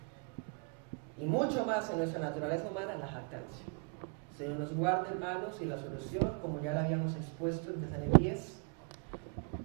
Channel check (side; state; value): left; quieter; 35.7 dB